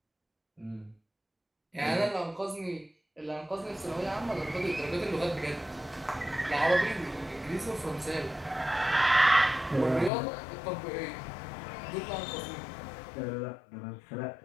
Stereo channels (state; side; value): drops out; right; at 10.1 s